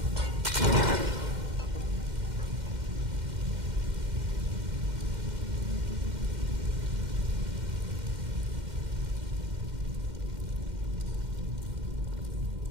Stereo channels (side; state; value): left; late; 2.1 ms